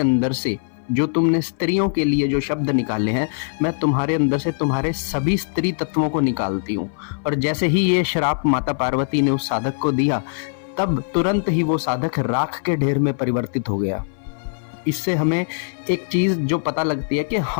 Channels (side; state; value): right; silent; 59 dB below the other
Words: से जो तुमने स्त्रियों के लिए जो शब्द निकाले हैं, मैं तुम्हारे अंदर से तुम्हारे सभी स्त्री तत्वों को निकालती हूँ। और जैसे ही ये श्राप माता पार्वती ने उस साधक को दिया तब तुरंत ही वो साधक राख के ढेर में परिवर्तित हो गया। इससे हमें एक चीज जो पता लगती है कि